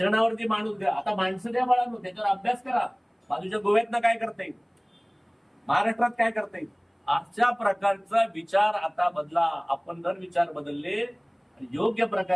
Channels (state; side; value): identical; both; correlation 1.00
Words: माणूस द्या. आता माणसं द्या बाळांनो, त्याच्यावर अभ्यास करा. बाजूच्या गोव्यातनं काय करता येईल, महाराष्ट्रात काय करता येईल, अशा प्रकारचा विचार आता बदला. आपण जर विचार बदलले आणि योग्य